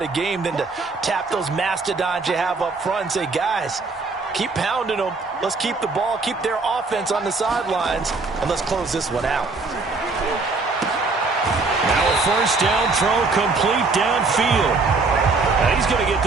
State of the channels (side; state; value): left; quieter; 3.9 dB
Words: a game than to tap those mastodons you have up front and say, guys, keep pounding them. Let's keep the ball, keep their offense on the sidelines, and let's close this one out. Now a first down throw complete downfield. And he's going to get